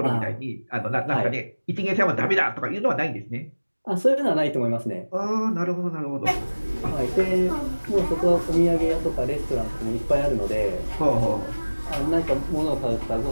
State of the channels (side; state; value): both; inverted; correlation -1.00